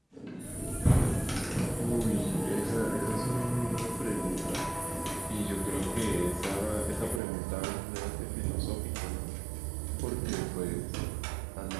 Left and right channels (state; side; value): drops out; left; at 7.2 s